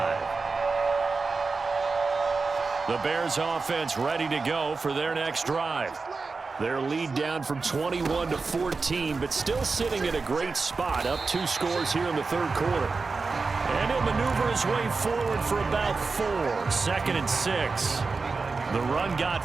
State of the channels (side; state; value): left; quieter; 4.2 dB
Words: The Bears offense ready to go for their next drive. Their lead down from 21 to 14, but still sitting at a great spot, up 2 scores here in the third quarter. And he'll maneuver his way forward for about 4. 2nd and 6. The run got